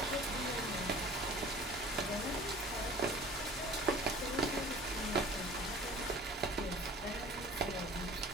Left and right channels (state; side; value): normal; both; correlation 0.45